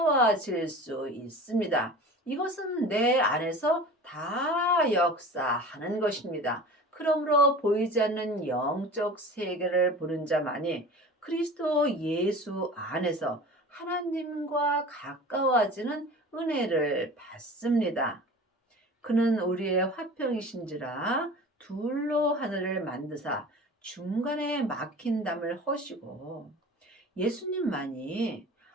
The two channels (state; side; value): normal; both; correlation 0.38